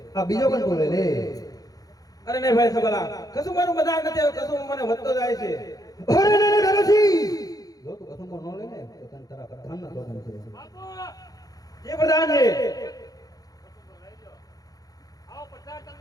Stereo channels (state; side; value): late; right; 0.18 ms